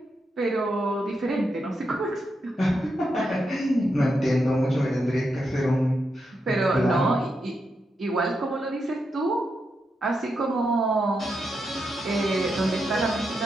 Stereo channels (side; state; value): both; normal; correlation 0.84